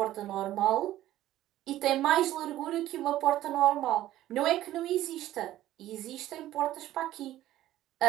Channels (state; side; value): quieter; left; 14.1 dB